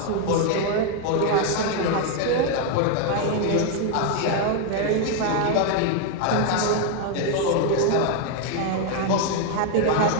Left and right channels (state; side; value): different; both; correlation 0.01